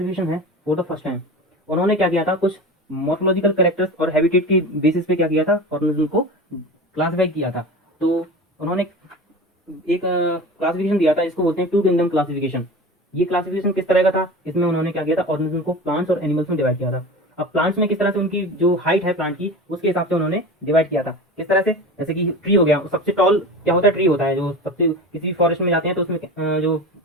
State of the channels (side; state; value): both; normal; correlation 0.31